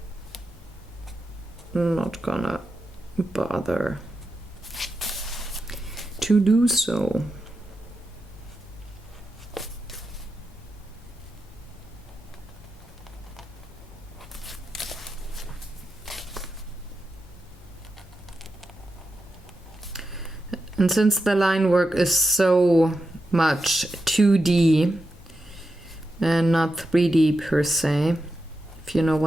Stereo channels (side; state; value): both; normal; correlation 0.88